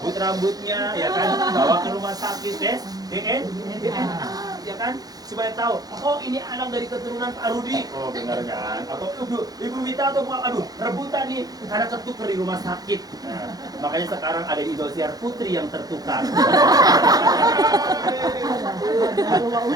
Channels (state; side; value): late; left; 0.18 ms